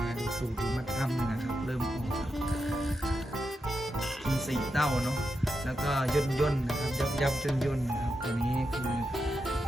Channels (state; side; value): normal; both; correlation 0.86